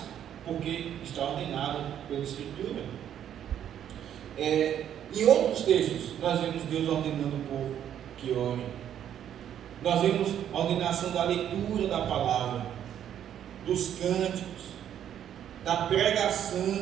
porque está ordenado pela Escritura. Em outros textos, nós vemos Deus ordenando o povo que ore. Nós vemos a ordenação da leitura da palavra, dos cânticos, da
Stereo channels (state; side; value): quieter; left; 10.0 dB